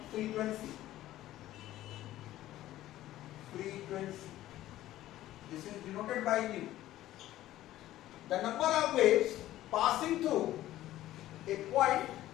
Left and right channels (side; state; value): right; quieter; 14.4 dB